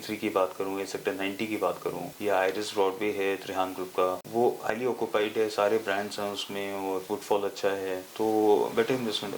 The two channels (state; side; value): identical; both; correlation 1.00